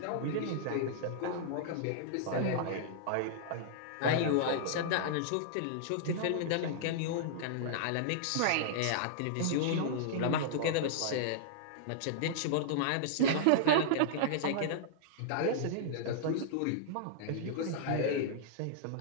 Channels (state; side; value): different; both; correlation -0.02